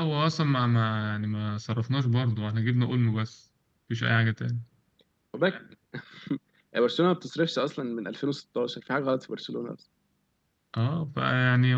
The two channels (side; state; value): both; identical; correlation 1.00